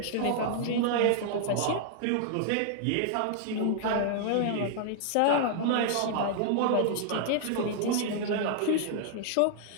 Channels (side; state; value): both; different; correlation -0.01